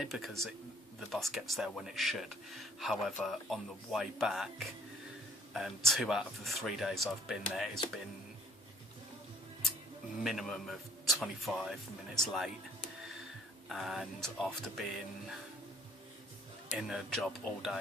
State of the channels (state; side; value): normal; both; correlation 0.58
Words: because the bus gets there when it should. However, on the way back, 2 out of the 3 days I've been there, it's been minimum of 25 minutes late. And after being in a job all